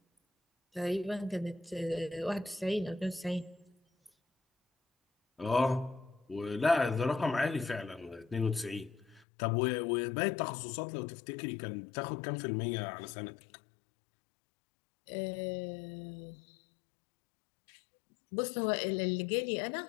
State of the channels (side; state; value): right; drops out; at 9.2 s